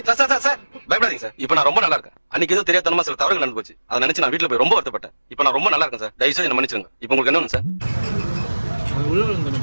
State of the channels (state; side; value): inverted; both; correlation -1.00